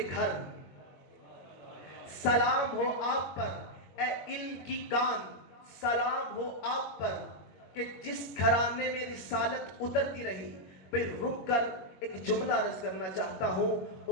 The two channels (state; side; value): late; right; 21 ms